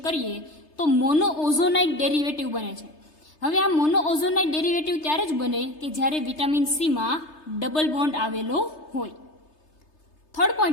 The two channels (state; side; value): late; right; 3.3 ms